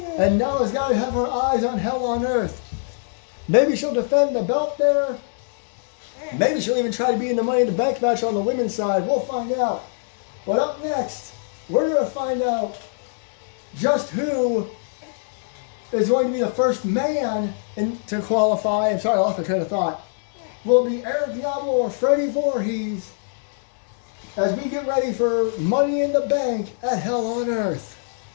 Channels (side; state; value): right; silent; digital silence